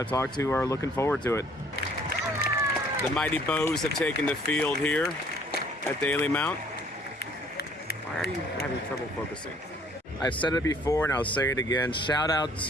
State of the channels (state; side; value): normal; both; correlation 0.59